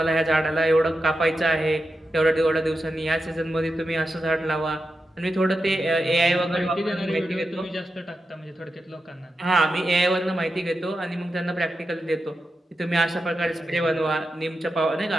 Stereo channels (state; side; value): normal; both; correlation 0.89